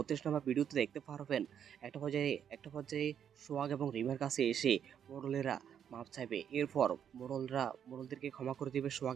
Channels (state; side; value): quieter; left; 8.7 dB